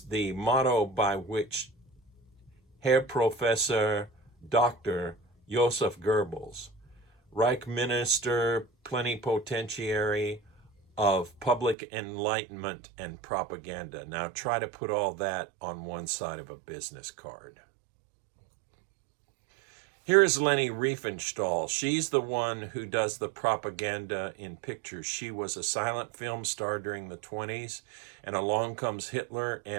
the motto by which Herr Professor Dr. Joseph Goebbels, Reich Minister Plenipotentiary of Public Enlightenment and Propaganda. Now try to put all that on one side of a business card. Here is Leni Riefenstahl. She's the one who does the propaganda in pictures. She was a silent film star during the 20s, and along comes Hitler,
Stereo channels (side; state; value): left; drops out; at 11.8 s